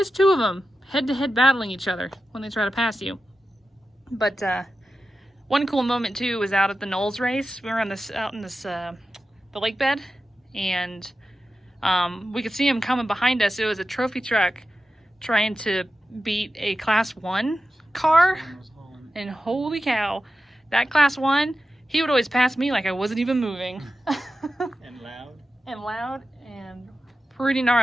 2 of them head-to-head battling each other when they try to pass you. But one cool moment too was out at the Knowles race. We were out in the lake bed, and we could see him coming behind us. It was a trophy truck trying to beat a Class 1 car, and holy cow, that Class 1, he would always pass me like I wasn't even moving. And loud and pretty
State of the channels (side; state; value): both; normal; correlation 0.92